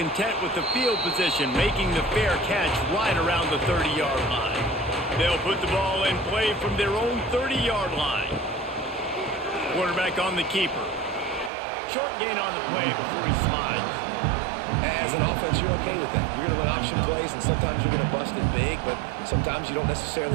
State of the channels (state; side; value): drops out; left; at 11.5 s